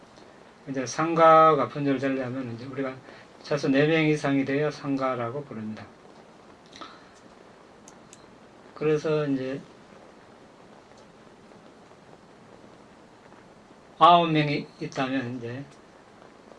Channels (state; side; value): identical; both; correlation 1.00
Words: 이제 상가가 분열되려면 이제 우리가 최소 4명 이상이 되어야 상가라고 부릅니다. 그래서 이제 9명이 있다면 이제